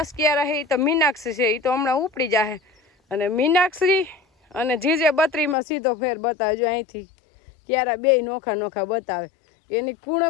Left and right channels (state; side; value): drops out; right; at 5.6 s